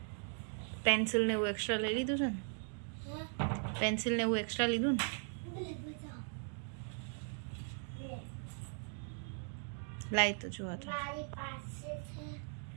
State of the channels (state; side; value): silent; left; 52 dB below the other